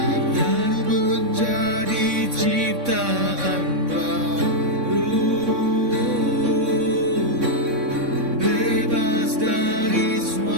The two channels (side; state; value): left; late; 3.6 ms